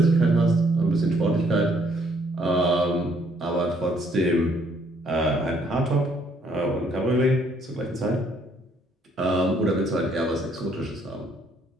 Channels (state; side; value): normal; both; correlation 0.66